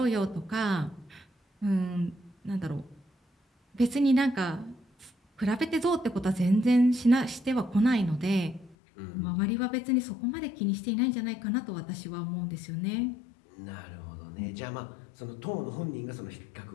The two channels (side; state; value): right; drops out; at 8.8 s